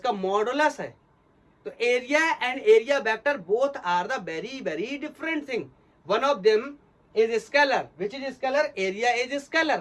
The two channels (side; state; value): both; identical; correlation 1.00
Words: मॉडुलस है। तो area and area vector both are the very very different thing. One of them is scalar, which is scalar? Area is